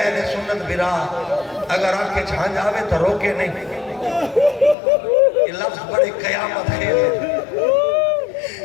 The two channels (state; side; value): drops out; right; at 4.8 s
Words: سنت برا اگر آنکھیں چھان جاوے تو روکے نہیں، یہ لفظ بڑے قیامت خیل